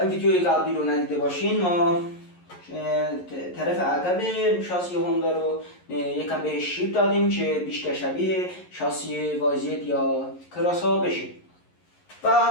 ویدیوی قبلی رو ندیده باشین، ما طرف عقب شاسی هوندا رو یکم به شیب دادیم که بیشتر شبیه شاسی وایزید یا کراس ها بشه. و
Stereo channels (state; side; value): late; right; 11 ms